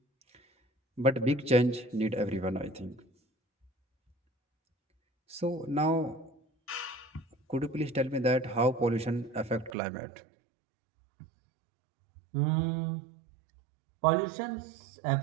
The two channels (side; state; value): left; drops out; at 9.7 s